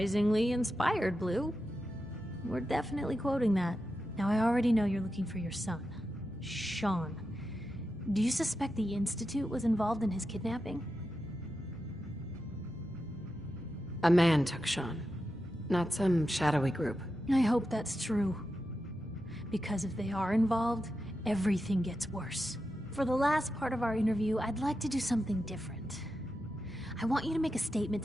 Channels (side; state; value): right; noise; rumble, 23 dB below the sound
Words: inspired, Blue. We're definitely quoting that. Now, I already know you're looking for your son, Sean. Do you suspect the Institute was involved in his kidnapping? A man took Sean, not some shadowy group. I hope that's true. Because if they are involved, everything gets worse. For the last part of our interview, I'd like to do something different. I want you to make a statement